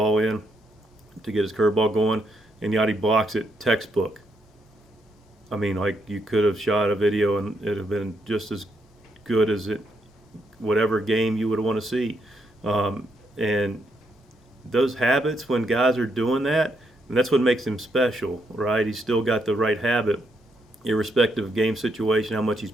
in to get his curveball going, and Yadi blocks it textbook. You could have shot a video, and it'd have been just as good as whatever game you would want to see. And those habits, when guys are doing that, and that's what makes him special, right? He's still got the right habit irrespective of game situation, how much he's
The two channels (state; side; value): normal; both; correlation 0.77